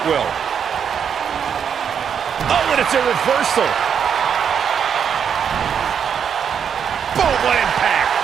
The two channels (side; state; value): left; quieter; 7.6 dB